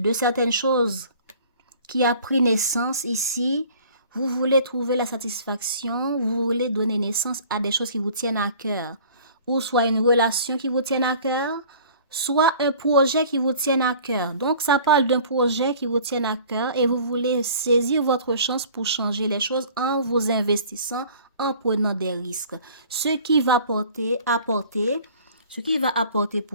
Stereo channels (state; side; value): inverted; both; correlation -0.49